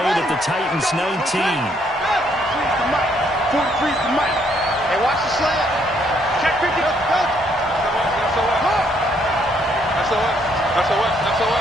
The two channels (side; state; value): both; normal; correlation 0.69